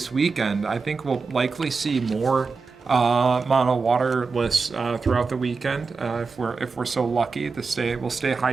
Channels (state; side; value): quieter; left; 4.6 dB